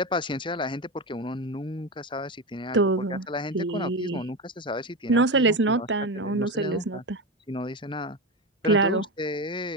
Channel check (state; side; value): normal; both; correlation 0.18